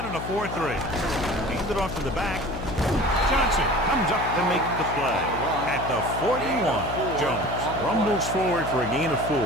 in a 4-3. Hand it off to the back. Johnson comes up to make the play at the 41. Jones rumbles forward for a gain of 4.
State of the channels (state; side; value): noise; left; hum, 7 dB below the sound